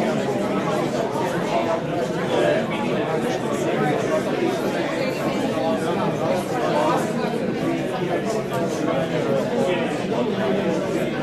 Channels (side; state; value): both; identical; correlation 1.00